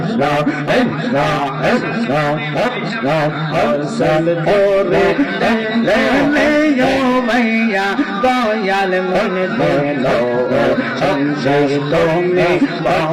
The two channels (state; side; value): identical; both; correlation 1.00